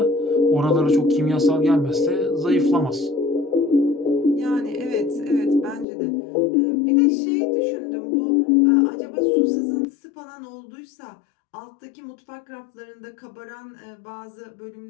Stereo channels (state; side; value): drops out; right; at 5.9 s